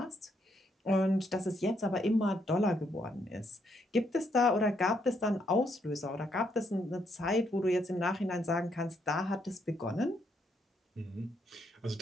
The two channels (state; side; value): normal; both; correlation 0.74